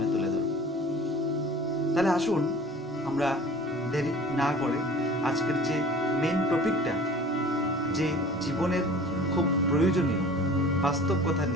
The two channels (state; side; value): normal; both; correlation 0.44